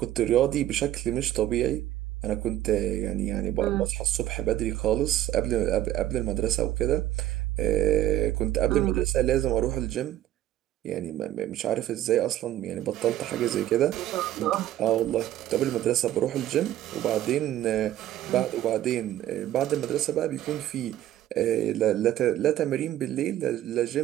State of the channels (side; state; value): left; quieter; 13.0 dB